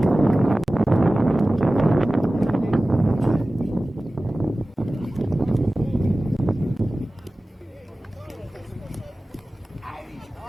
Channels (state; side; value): normal; both; correlation 0.97